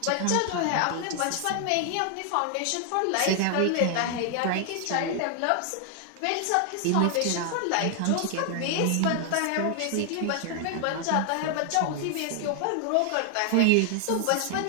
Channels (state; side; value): different; both; correlation 0.00